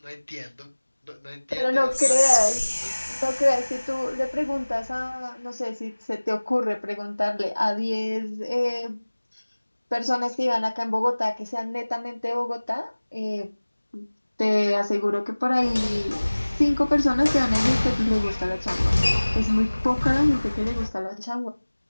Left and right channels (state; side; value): inverted; both; correlation -1.00